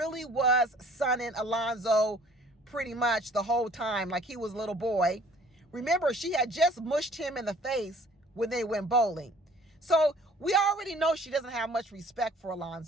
was sunning Alonzo pretty much the whole time like he was a little boy. Remember, she had just mushed him in the face when they went bowling. So we already know she doesn't have much respect for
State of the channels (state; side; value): normal; both; correlation 0.54